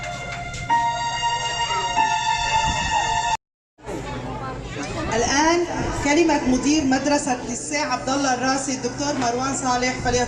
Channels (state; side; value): identical; both; correlation 1.00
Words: الآن كلمة مدير مدرسة ليسيه عبد الله الراسي الدكتور مروان صالح